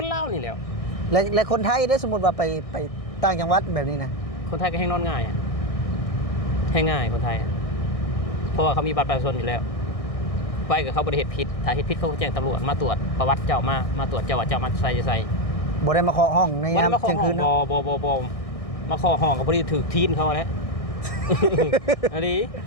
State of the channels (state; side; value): late; right; 1.6 ms